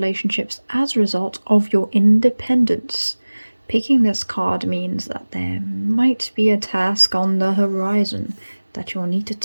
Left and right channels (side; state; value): both; inverted; correlation -1.00